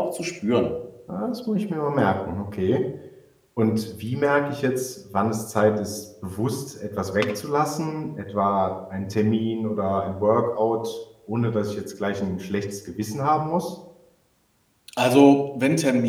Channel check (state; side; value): identical; both; correlation 1.00